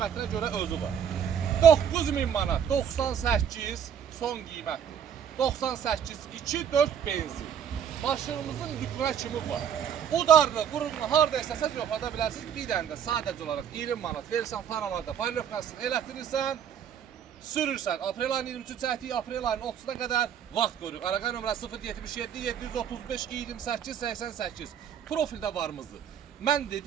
görə özü var. 9000 manat, 98 son qiymətdir. 98, 2-4 benzin. Maşınımızın lükünə kimi var. Udarlı, qurumlu, harada istəsəz yoxlada bilərsiniz. Bir dənə də sadəcə olaraq 20 manat verirsən, faralarda paylaşmasını elətdirirsən. Sürürsən. Aprel ayının 23-cü çəkdiyi aprel ayının 30-na qədər vaxt qoyuruq. Araqay nömrəsi 077 735 28 88. Profildə varımızdır. Mən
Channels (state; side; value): quieter; left; 8.4 dB